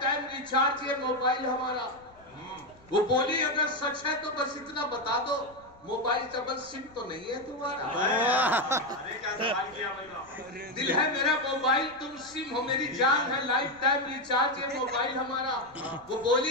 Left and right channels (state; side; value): noise; left; rumble, 27 dB below the sound